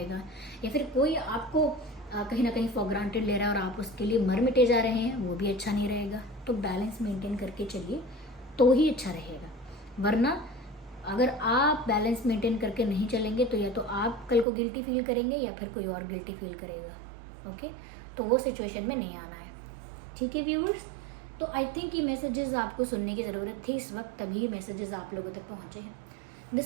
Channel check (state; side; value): drops out; left; at 14.5 s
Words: या फिर कोई आपको कहीं ना कहीं फॉर ग्रांटेड ले रहा है और आप उसके लिए मर मिटे जा रहे हैं, वो भी अच्छा नहीं रहेगा। तो बैलेंस मेंटेन करके चलिए तो ही अच्छा रहेगा। वरना अगर आप बैलेंस मेंटेन करके नहीं चलेंगे तो या तो आप कल को गिल्टी फील करेंगे या फिर कोई और गिल्टी फील करेगा। ओके, तो वो सिचुएशन में नहीं आना है। ठीक है व्यूअर्स, तो आई थिंक ये मैसेजेस आपको सुनने की ज़रूरत थी इस वक्त, तभी मैसेजेस आप लोगों तक पहुँचे हैं।